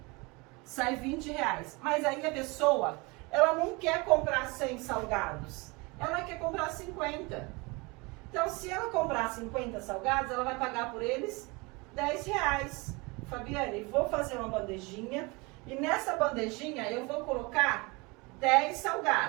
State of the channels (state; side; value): quieter; left; 26.5 dB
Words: sai R$20. Mas aí a pessoa, ela não quer comprar 100 salgados, ela quer comprar 50. Então, se ela comprar 50 salgados, ela vai pagar por eles R$10. Fabiane, vou fazer uma bandejinha e nessa bandejinha eu vou colocar 10